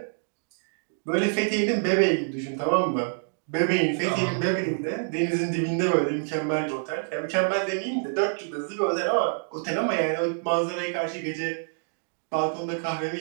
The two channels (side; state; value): left; silent; digital silence